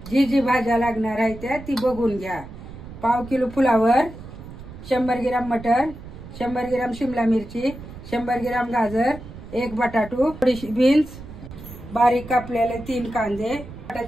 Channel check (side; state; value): right; noise; rumble, 14 dB below the sound